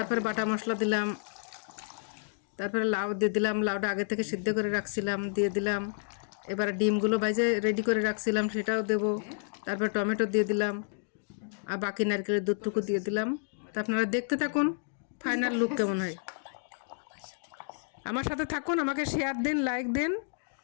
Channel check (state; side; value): silent; right; digital silence